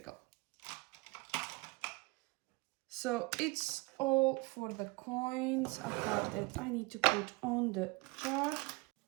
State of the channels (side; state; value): left; quieter; 25.2 dB